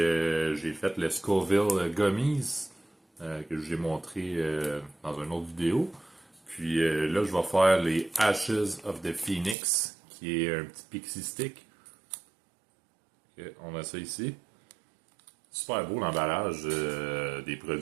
fait le Scoville Gummies que j'ai montré dans une autre vidéo. Puis là, je vais faire les Ashes of the Phoenix, qui est un petit pixie stick. Okay, on a ça ici. Super beau l'emballage des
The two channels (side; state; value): left; drops out; at 9.6 s